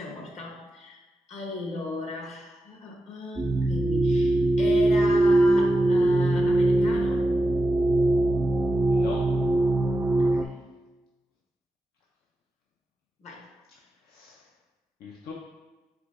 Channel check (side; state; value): both; normal; correlation 0.91